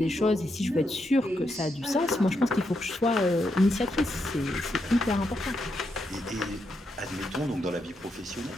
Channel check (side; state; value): both; normal; correlation 0.82